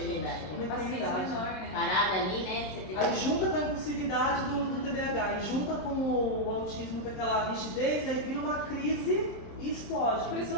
Uma paciência menor, né? Parada ali, né? Você tem Aí junta com a impulsividade do TDAH, e junta com o autismo, com aquela rigidez, aí vira uma crise e explode. Por isso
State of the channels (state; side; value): late; right; 27 ms